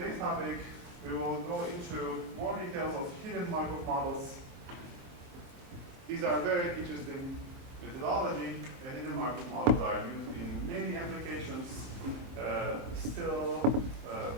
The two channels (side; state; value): left; late; 23 ms